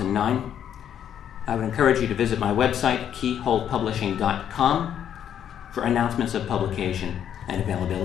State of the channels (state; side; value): quieter; right; 9.5 dB